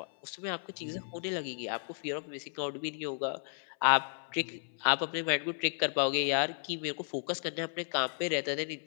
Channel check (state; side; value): silent; right; 55 dB below the other